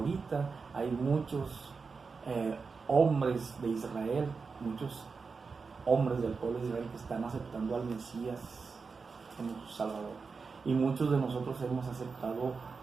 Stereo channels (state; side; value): quieter; left; 4.8 dB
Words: hay muchos hombres de Israel, muchos hombres del pueblo de Israel que están aceptando al Mesías como su Salvador. Y muchos de nosotros hemos aceptado